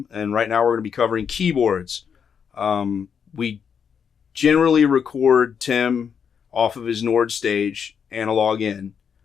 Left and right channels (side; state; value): right; quieter; 7.1 dB